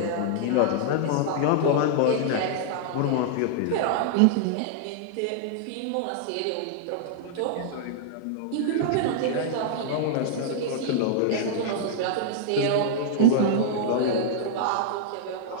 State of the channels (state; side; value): different; both; correlation -0.01